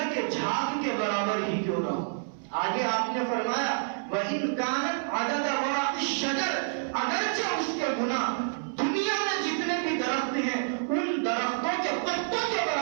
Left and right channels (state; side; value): silent; left; 58 dB below the other